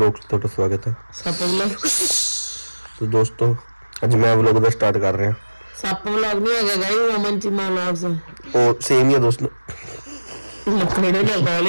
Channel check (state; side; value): inverted; both; correlation -1.00